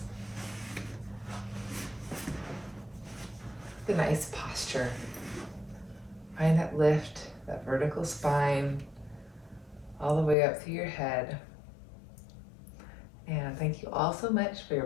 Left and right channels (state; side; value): drops out; right; at 10.4 s